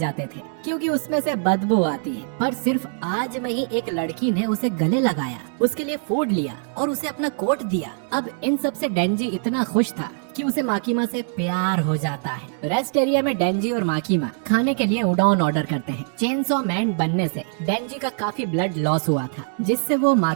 थे क्योंकि उसमें से बदबू आती है। पर सिर्फ आज में ही एक लड़की ने उसे गले लगाया, उसके लिए फूड लिया और उसे अपना कोट दिया। अब इन सब से डेंजी इतना खुश था कि उसे माकीमा से प्यार हो जाता है। रेस्ट एरिया में डेंजी और माकीमा खाने के लिए उडॉन ऑर्डर करते हैं। चेनसॉ मैन बनने से डेंजी का काफी ब्लड लॉस हुआ था, जिससे वो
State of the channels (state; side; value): silent; left; 63 dB below the other